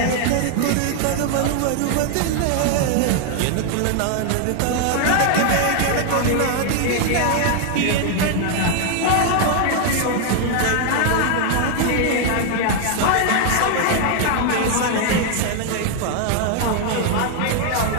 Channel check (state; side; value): different; both; correlation 0.00